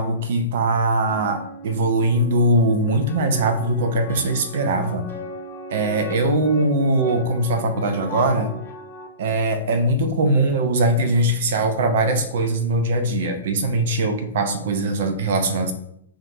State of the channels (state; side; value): inverted; both; correlation -0.39